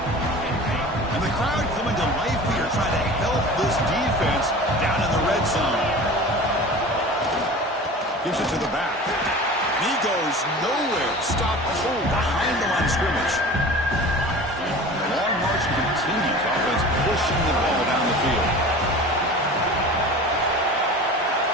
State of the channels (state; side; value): normal; both; correlation 0.38